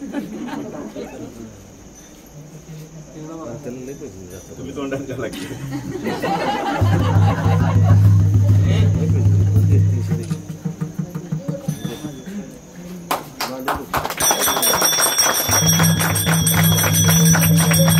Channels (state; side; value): identical; both; correlation 1.00